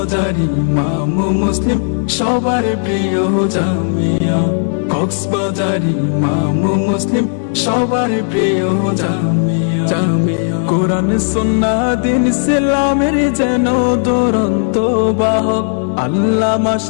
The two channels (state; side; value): silent; right; digital silence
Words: ইমাম মুসলিম সবার প্রিয় জামিয়া, কক্সবাজারে ইমাম মুসলিম সবার প্রিয় জামিয়া। জামিয়া কোরআন সুন্নাহ দিন ইসলামের যেন দুরন্ত বাহক, আল্লামা